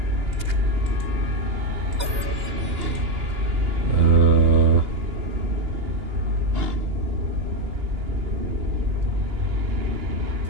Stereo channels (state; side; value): late; left; 2.9 ms